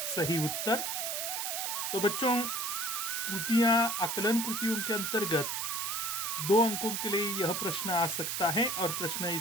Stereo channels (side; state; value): right; noise; hiss, 1 dB below the sound